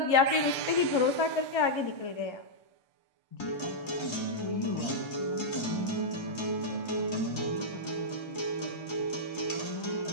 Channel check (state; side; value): late; right; 1.3 ms